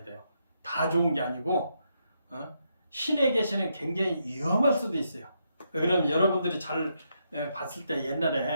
돼요. 다 좋은 게 아니고, 신에 계시는 굉장히 위험할 수도 있어요. 그럼 여러분들이 잘 봤을 때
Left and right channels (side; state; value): both; inverted; correlation -0.79